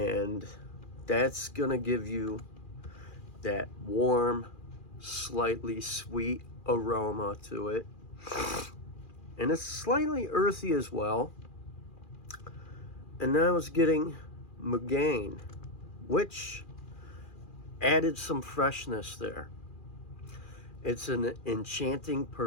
that's gonna give you that warm, slightly sweet aroma to it. And it's slightly earthy as well. And then I was getting Mugain, which added some freshness there. It's an enchanting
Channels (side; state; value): right; late; 2.4 ms